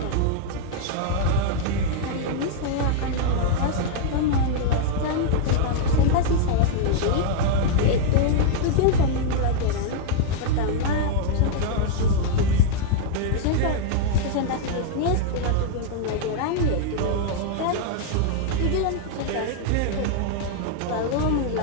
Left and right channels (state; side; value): different; both; correlation -0.01